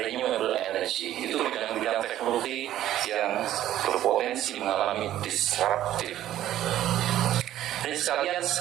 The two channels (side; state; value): left; quieter; 12.7 dB